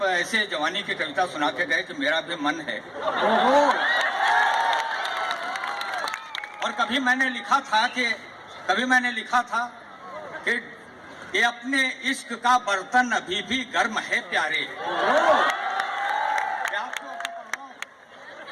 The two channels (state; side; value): identical; both; correlation 1.00